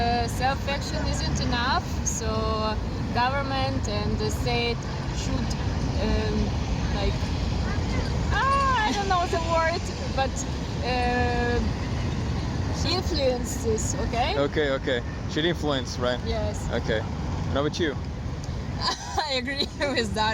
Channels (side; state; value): both; identical; correlation 1.00